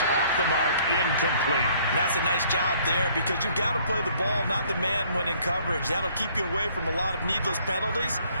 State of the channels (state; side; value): inverted; both; correlation -0.60